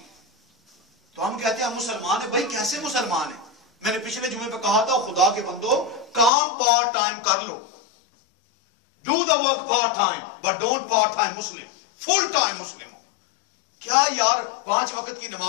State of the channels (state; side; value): drops out; right; at 6.3 s